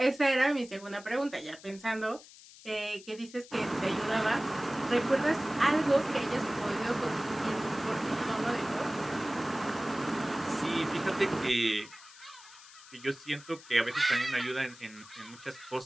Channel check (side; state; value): left; noise; hiss, 20 dB below the sound